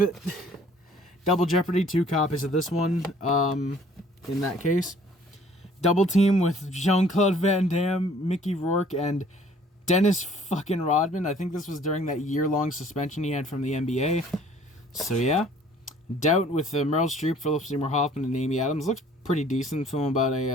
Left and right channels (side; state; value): both; normal; correlation 0.55